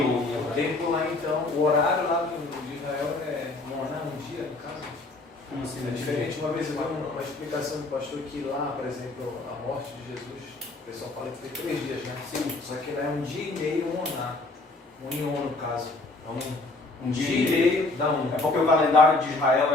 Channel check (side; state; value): right; quieter; 3.1 dB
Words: O tempo lá então, o horário lá de Israel é Moná, um dia, no caso. Como assim? É diferente. Uma vez eu vi uma explicação do pastor que lá, por exemplo, a morte de Jesus, o pessoal fala que foi 3 dias, né? Sim. Só que lá é um dia e meio, um Moná. Um ion, no caso. Um dia e meio dá um. É porque o calendário de Israel